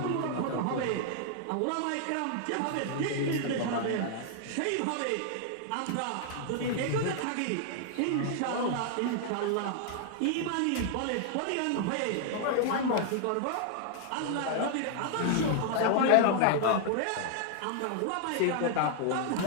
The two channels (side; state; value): both; different; correlation 0.00